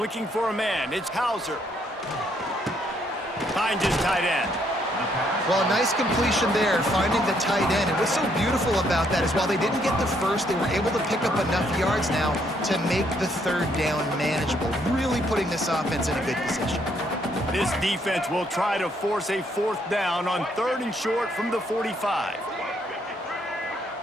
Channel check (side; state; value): both; normal; correlation 0.71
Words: for a man. It's Hauser. Finds his tight end. Well, a nice completion there, finding the tight end. And what's so beautiful about that is while they didn't get the first, they were able to pick up enough yards now to make the third down manageable, really putting this offense in a good position. This defense will try to force a 4th down on 3rd and short from the 45.